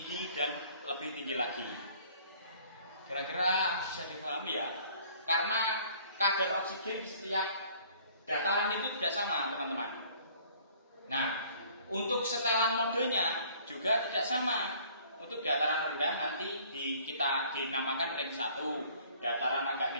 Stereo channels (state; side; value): inverted; both; correlation -0.55